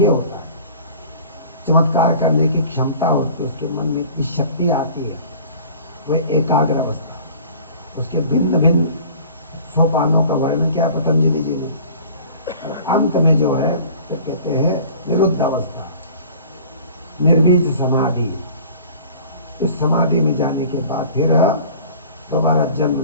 होता है, चमत्कार करने की क्षमता होती है, उसके मन में इतनी शक्ति आती है, वह एकाग्र अवस्था। उसके भिन्न भिन्न सोपानों का वर्णन किया पतंजलि जी ने। और अंत में जो है तो कहते हैं निरुद्ध अवस्था, निर्बीज समाधि। इस समाधि में जाने के बाद फिर दोबारा जन्म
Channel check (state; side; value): inverted; both; correlation -0.46